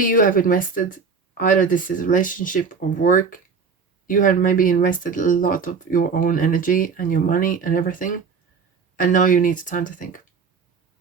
have invested, either this is relationship or work, you have maybe invested a lot of your own energy and your money and everything, and now you need time to think.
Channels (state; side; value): quieter; left; 5.5 dB